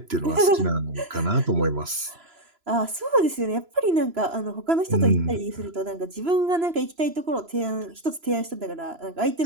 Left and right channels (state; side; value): late; left; 3.0 ms